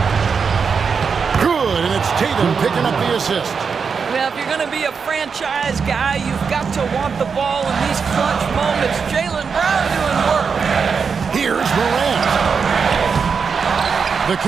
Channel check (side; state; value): left; quieter; 5.8 dB